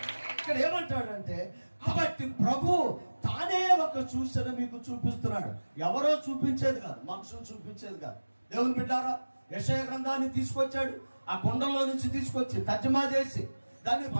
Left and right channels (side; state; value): both; inverted; correlation -1.00